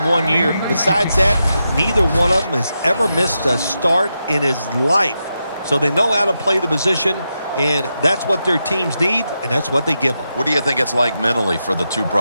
1 year. Besides that, neither one of them has ever missed a start in his life. So they know how to play the position, and that's what their teams need, and that's what they give them. What do you think it's like mentally for the two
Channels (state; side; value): inverted; both; correlation -0.87